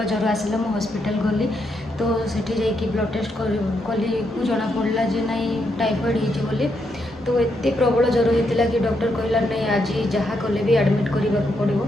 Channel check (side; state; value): both; normal; correlation 0.79